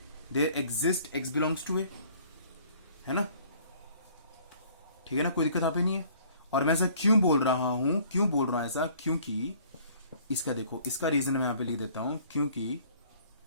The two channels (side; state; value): both; inverted; correlation -0.56